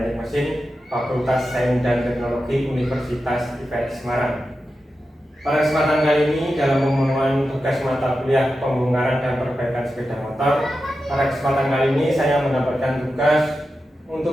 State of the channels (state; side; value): normal; both; correlation 0.91